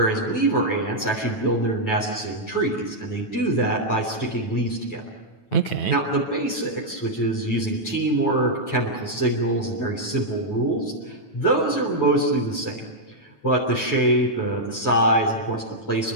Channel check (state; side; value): late; right; 9.2 ms